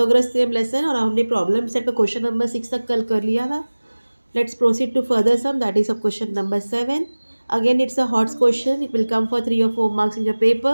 theorem lesson और हमने problem set का question number 6 तक कल कर लिया था. Let's proceed to further sum, that is of question number 7. Again it's a hot question. It will come for 3 or 4 marks in your paper.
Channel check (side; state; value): both; inverted; correlation -1.00